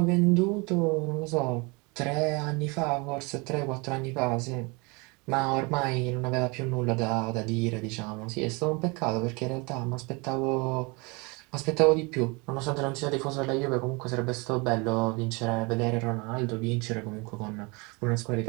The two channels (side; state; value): left; quieter; 28.5 dB